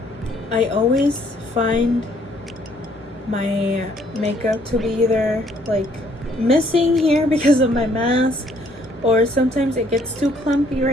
I always find my makeup to be either like missing here because of my mask, or sometimes it gets too clumpy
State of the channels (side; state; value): both; normal; correlation 0.64